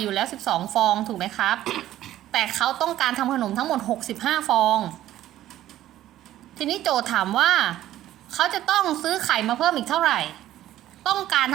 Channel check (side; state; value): left; quieter; 13.4 dB